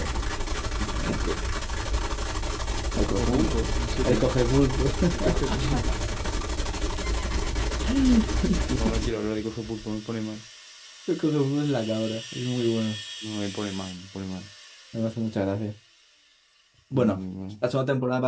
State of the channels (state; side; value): identical; both; correlation 1.00